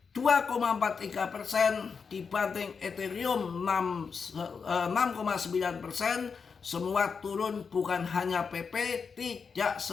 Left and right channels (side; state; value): right; quieter; 5.6 dB